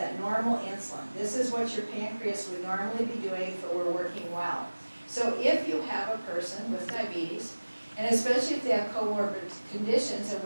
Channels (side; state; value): both; inverted; correlation -1.00